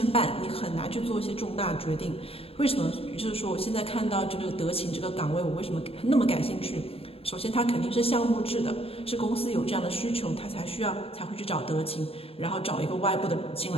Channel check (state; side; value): late; right; 0.28 ms